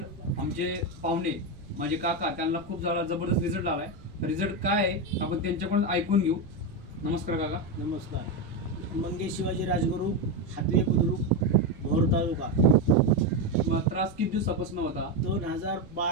आमचे पाहुणे माझे काका त्यांना खूप सारा जबरदस्त रिझल्ट आला आहे. रिझल्ट काय आहे आपण त्यांच्याकडून ऐकून घेऊ. नमस्कार काका. नमस्कार. मंगेश शिवाजी राजगुरू, हातवे बुद्रुक, भोर तालुका. तुम्हाला त्रास किती दिवसापासून होता?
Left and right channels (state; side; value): noise; right; rumble, 21 dB below the sound